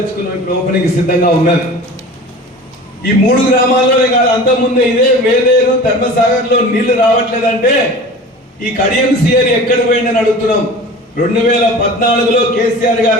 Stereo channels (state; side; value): normal; both; correlation 0.38